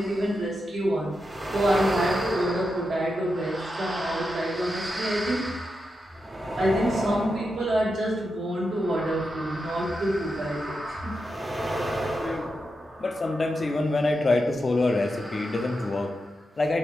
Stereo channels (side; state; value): both; normal; correlation 0.87